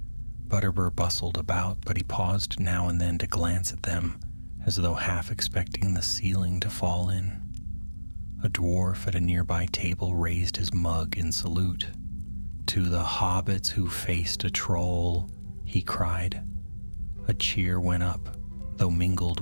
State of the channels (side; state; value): both; inverted; correlation -1.00